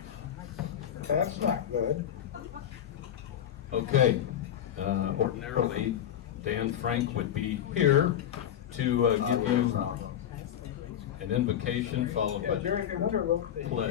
That's not good. Okay. Ordinarily, Dan Frank would be here to give you an invocation followed by During the winter, they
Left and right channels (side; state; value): right; quieter; 10.1 dB